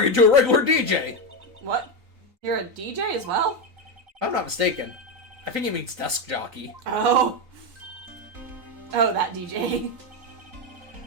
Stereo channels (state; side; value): late; left; 3.9 ms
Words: into a regular DJ! What? You're a DJ as well? If I'm not mistaken. I think he means desk jockey. Oh. Oh, that DJ.